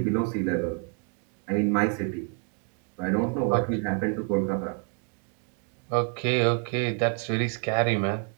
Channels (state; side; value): quieter; left; 37.4 dB